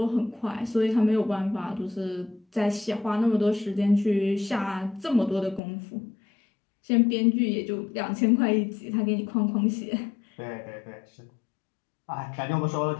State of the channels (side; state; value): right; drops out; at 5.6 s